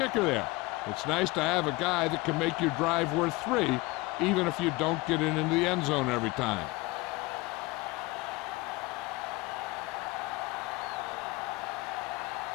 there. It's nice to have a guy that can make your drive worth 3, even if you don't get it into the end zone every time.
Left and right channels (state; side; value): quieter; right; 22.3 dB